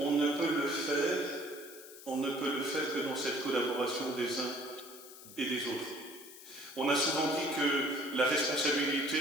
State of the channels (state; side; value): noise; left; hiss, 17 dB below the sound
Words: ne peut le faire que dans cette collaboration des uns et des autres. On a souvent dit que la